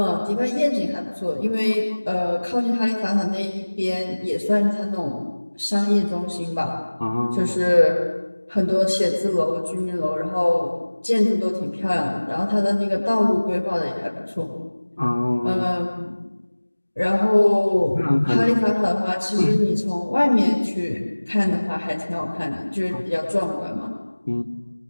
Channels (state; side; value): inverted; both; correlation -1.00